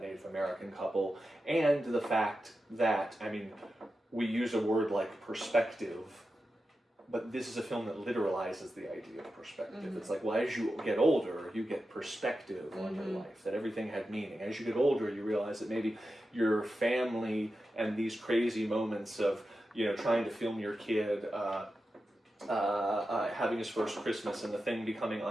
Native American couple, and the fact that, I mean, we use a word like perspective, but this is a film that literalizes the idea of perspective. It's like, well, as you get older, you get perspective on your life, that everything had meaning. As you get older, you realize that maybe your family and these crazy moments of, trying to film your kid having his first Christmas and the thing becoming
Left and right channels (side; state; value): both; normal; correlation 0.91